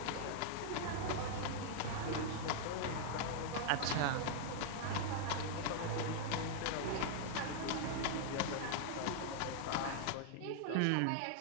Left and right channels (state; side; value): different; both; correlation -0.01